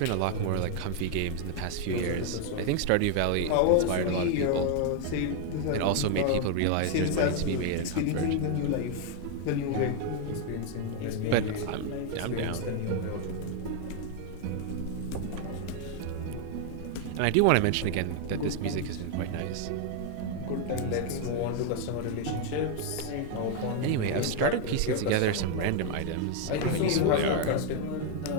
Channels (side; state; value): both; different; correlation 0.00